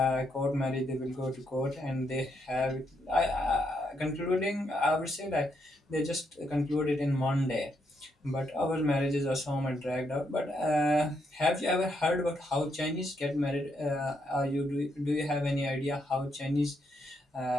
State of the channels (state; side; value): normal; both; correlation 0.77